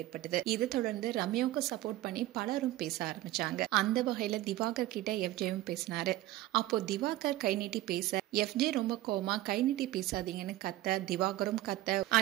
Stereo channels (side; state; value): left; quieter; 15.9 dB